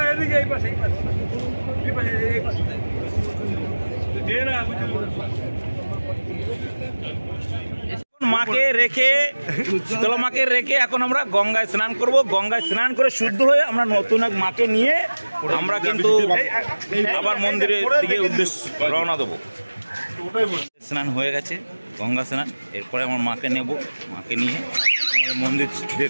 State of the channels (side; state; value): both; inverted; correlation -1.00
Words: মাকে রেখে শীতলা মাকে রেখে এখন আমরা গঙ্গায় স্নান করব। গঙ্গায় স্নান করে শুদ্ধ হয়ে আমরা নতুন এক মাকে নিয়ে আমরা কিন্তু আবার মন্দিরের দিকে উদ্দেশ্য রওনা দেবো। স্নান হয়ে গেছে, গঙ্গা স্নান। এরপরে আমার মাকে নেব, মাকে নিয়ে আমাদের